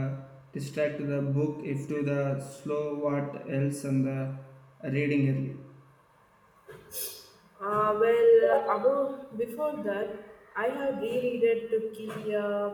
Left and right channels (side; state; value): both; identical; correlation 1.00